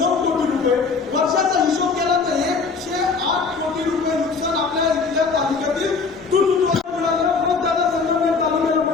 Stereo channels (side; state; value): right; quieter; 4.7 dB